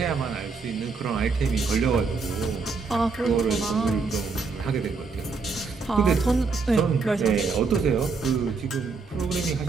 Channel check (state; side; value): quieter; left; 4.6 dB